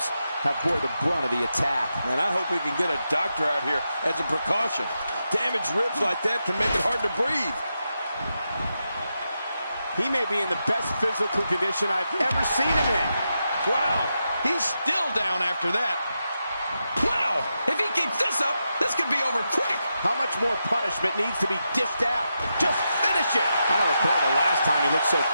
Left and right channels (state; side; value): inverted; both; correlation -0.87